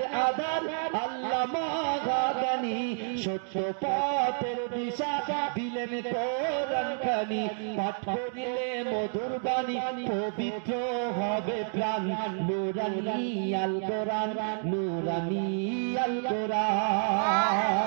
আধার আল্লামা জ্ঞানী সত্য পথের দিশা দিলেন কোরআন খানি পাঠ করিলে মধুর বাণী পবিত্র হবে প্রাণ নূরানী আল কোরআন নূরানী আল কোরআন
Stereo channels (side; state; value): left; silent; digital silence